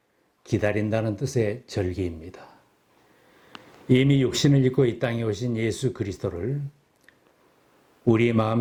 기다린다는 뜻의 절기입니다. 이미 육신을 입고 이 땅에 오신 예수 그리스도를 우리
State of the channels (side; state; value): both; identical; correlation 1.00